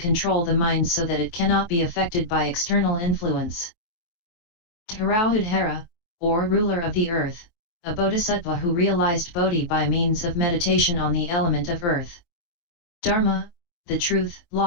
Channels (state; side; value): late; right; 23 ms